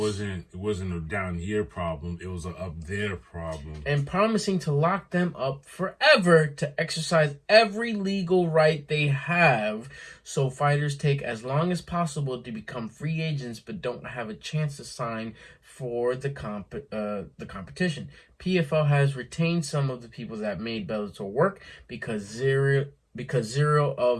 wasn't a down here problem, it was a up there problem. And promising to lock them up forever to exercise every legal right they have, so fighters take as long as possible to become free agents but don't have a chance to sign for the competition. PFL has retained some of the people that made Bellator work because zero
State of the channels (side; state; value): both; identical; correlation 1.00